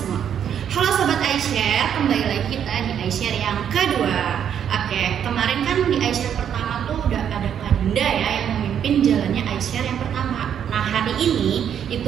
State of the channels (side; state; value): left; quieter; 8.8 dB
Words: Halo Sobat iShare, kembali lagi kita di iShare yang kedua. Oke, kemarin kan di iShare pertama tuh udah ada Kak Dinda ya yang memimpin jalannya iShare yang pertama. Nah hari ini